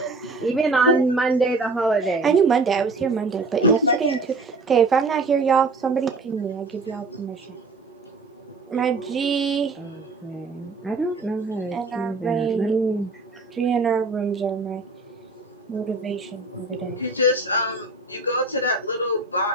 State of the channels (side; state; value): left; quieter; 3.5 dB